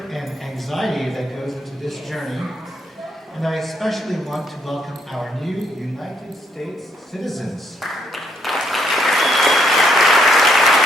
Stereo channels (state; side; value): normal; both; correlation 0.73